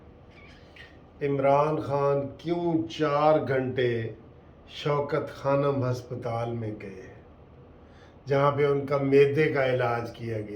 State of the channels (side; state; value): both; identical; correlation 1.00